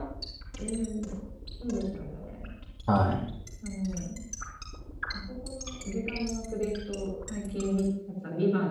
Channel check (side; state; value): both; identical; correlation 1.00